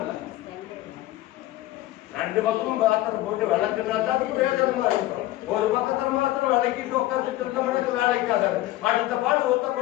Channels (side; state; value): right; quieter; 16.1 dB